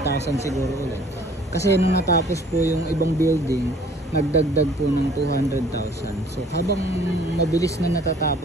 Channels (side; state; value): both; normal; correlation 0.55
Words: siguro ulit. Kasi nung natapos po yung ibang building, nagdagdag po ng 200,000. So habang mabilis na